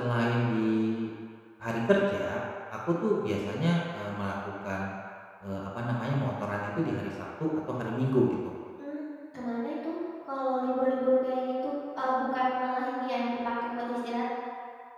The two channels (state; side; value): identical; both; correlation 1.00